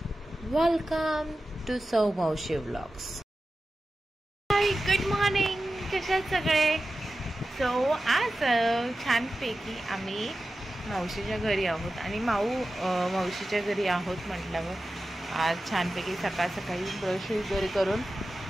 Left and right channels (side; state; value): both; normal; correlation 0.93